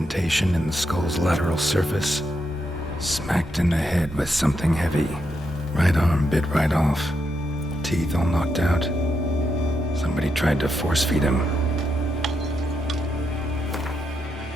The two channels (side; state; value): both; normal; correlation 0.82